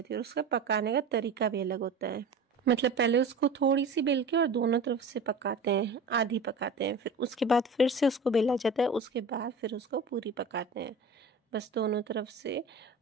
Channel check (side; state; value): left; quieter; 3.7 dB